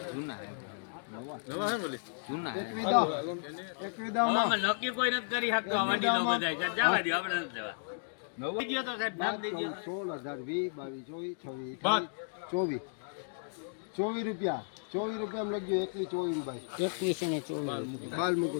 જૂના નક્કી કોઈ નથી કરી શકતો આ વાડી નો બધાય જવા દો આપણે નથી લેવા નવા દીયો તો સાહેબ નામ દઈ દો 16 18 20 22 રૂપિયા 24 રૂપિયા લખજો 21 ભાઈ 21 ને 24 બાલ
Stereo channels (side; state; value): right; silent; digital silence